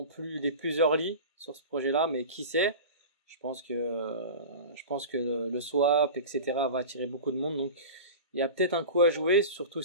plus les plus early sur ce projet-là, mais qui sait. Je pense que le swap, etc. va attirer beaucoup de monde. Donc il y a peut-être un coup à jouer, surtout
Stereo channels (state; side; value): inverted; both; correlation -0.32